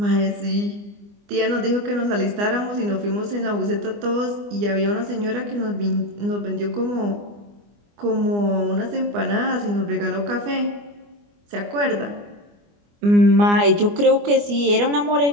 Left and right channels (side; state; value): left; late; 24 ms